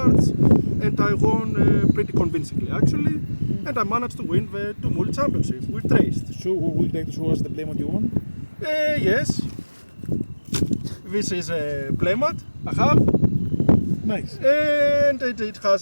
and I won pretty convincingly actually. And I managed to win the Tumult Championship with Treyst. So, would you like to show us the playmat you won? Yes. This is a playmat I have. Nice. And it has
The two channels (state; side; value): inverted; both; correlation -1.00